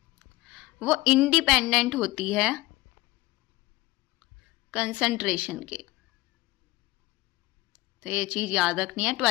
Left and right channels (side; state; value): right; quieter; 19.6 dB